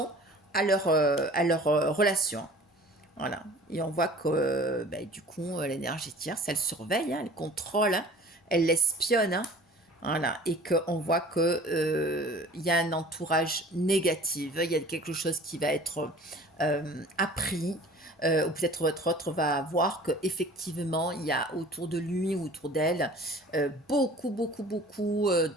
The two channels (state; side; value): normal; both; correlation 0.46